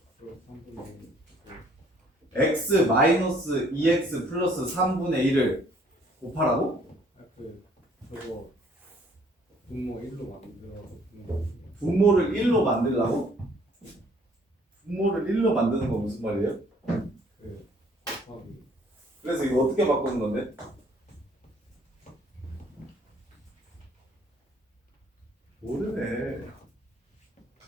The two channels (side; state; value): both; normal; correlation 0.61